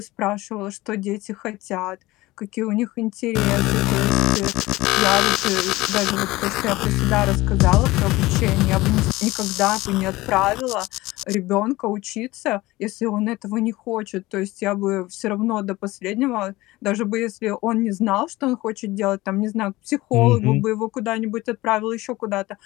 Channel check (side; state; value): right; quieter; 19.3 dB